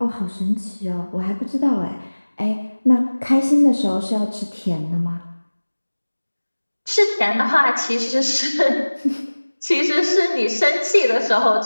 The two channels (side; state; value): both; inverted; correlation -1.00